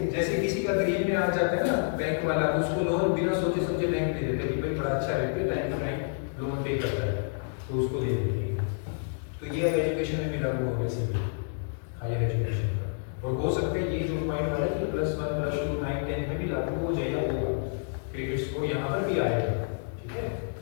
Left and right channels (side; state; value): right; silent; digital silence